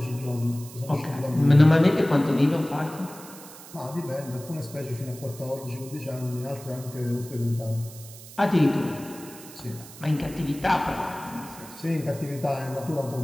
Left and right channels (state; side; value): noise; right; hiss, 17 dB below the sound